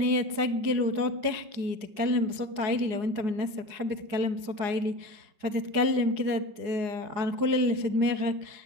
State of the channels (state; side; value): late; left; 4.8 ms